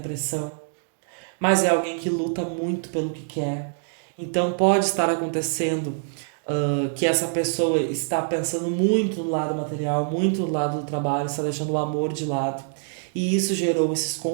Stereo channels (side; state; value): left; silent; digital silence